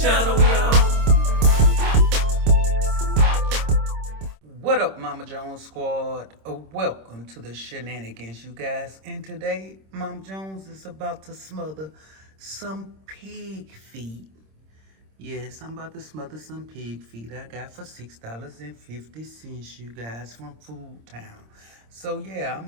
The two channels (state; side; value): late; left; 26 ms